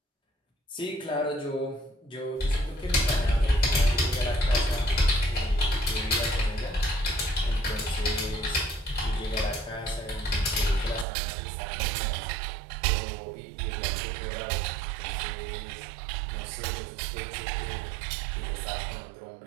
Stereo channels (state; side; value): drops out; left; at 11.1 s